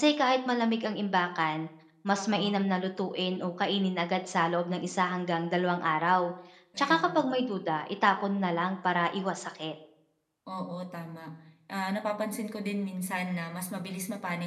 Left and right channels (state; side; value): identical; both; correlation 1.00